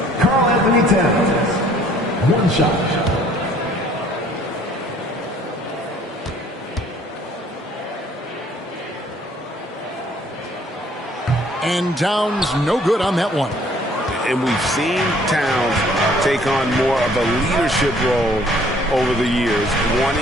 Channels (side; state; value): both; normal; correlation 0.58